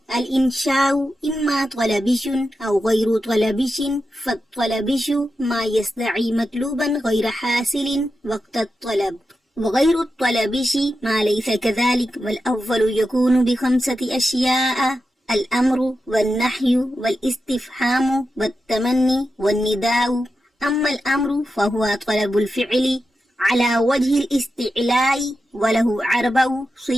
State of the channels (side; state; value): both; normal; correlation 0.90